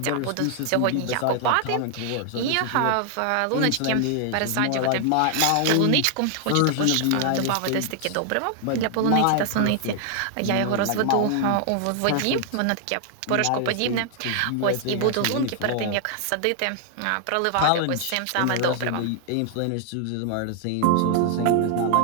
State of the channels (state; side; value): different; both; correlation 0.00